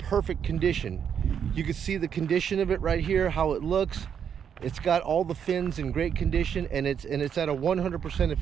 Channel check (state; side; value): quieter; left; 7.9 dB